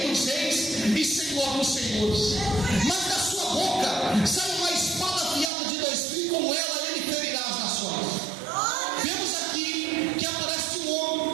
dos Reis e Senhor dos Senhores. Mas da sua boca sai uma espada afiada de 2 fios, com ela ele ferirá as nações. Vemos aqui que aparece um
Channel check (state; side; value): drops out; left; at 5.5 s